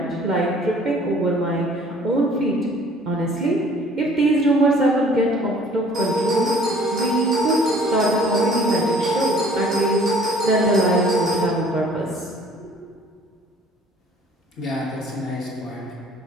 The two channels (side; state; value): both; normal; correlation 0.54